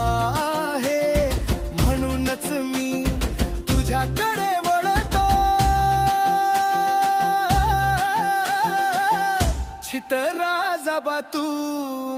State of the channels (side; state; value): both; identical; correlation 1.00